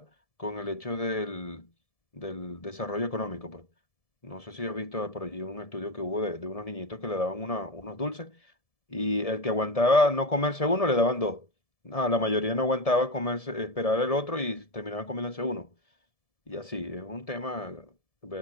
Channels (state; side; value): late; right; 1.7 ms